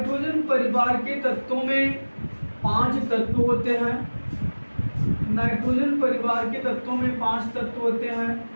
परिवार के तत्वों में 5 तत्व होते हैं। नाइट्रोजन परिवार के तत्वों में 5 तत्व होते हैं:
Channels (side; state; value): both; inverted; correlation -1.00